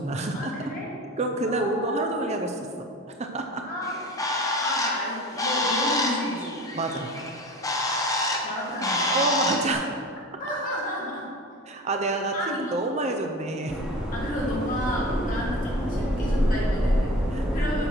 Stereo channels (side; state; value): both; normal; correlation 0.35